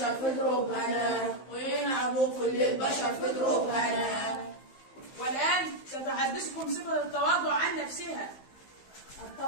في دروبنا، وينعموا كل البشر في دروبنا. والآن ستحدثكم صفة التواضع عن نفسها.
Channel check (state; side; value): late; right; 15 ms